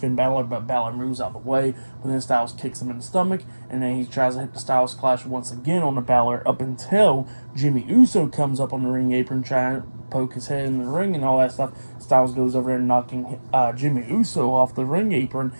Balor, but Balor moves out of the way. But then Styles kicks him in the stomach, and then he tries to hit the Styles Clash once again on the Balor, up until Jimmy Uso comes up on the ring apron, trying to poke his head in the ring and all that stuff. Styles goes over there, knocking Jimmy Uso off the ring apron,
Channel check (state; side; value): inverted; both; correlation -1.00